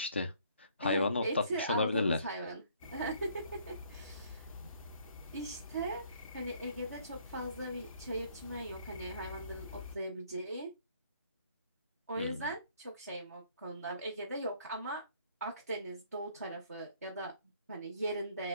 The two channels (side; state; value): both; inverted; correlation -0.63